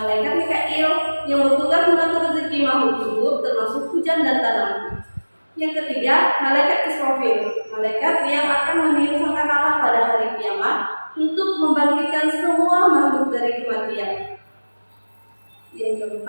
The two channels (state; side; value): inverted; both; correlation -1.00